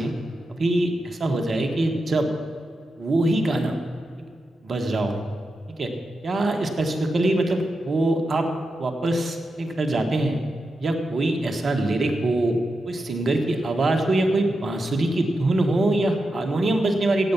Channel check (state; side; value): normal; both; correlation 0.88